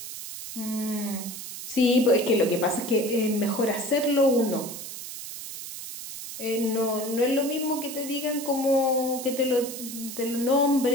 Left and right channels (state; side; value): noise; right; hiss, 10 dB below the sound